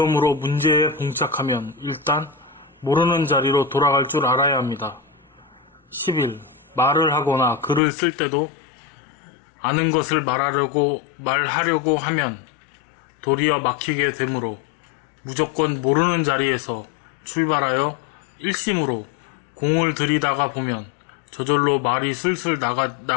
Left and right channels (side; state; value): right; drops out; at 7.8 s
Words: 문제에 봉착하면 일단 모르는 자리로 돌아갈 줄 알아야 합니다. 11. 말을 하거나 글을 쓸 때도 아는 것을 말하려고 하면 도리어 막히게 되므로 무조건 모르는 자리에서 출발하여 일심으로 공을 들이다가 보면 저절로 말이 슬슬